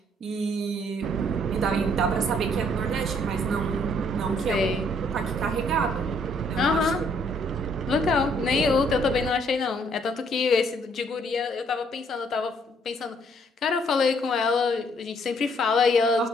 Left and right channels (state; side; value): normal; both; correlation 0.66